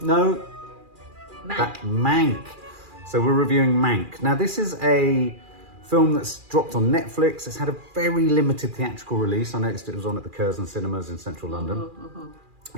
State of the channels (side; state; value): left; late; 2.4 ms